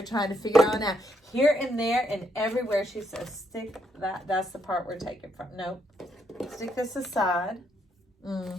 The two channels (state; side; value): normal; both; correlation 0.75